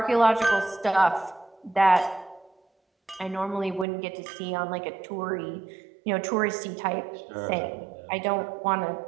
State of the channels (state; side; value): drops out; left; at 3.9 s